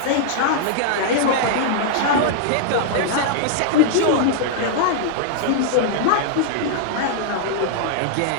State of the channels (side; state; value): both; different; correlation -0.01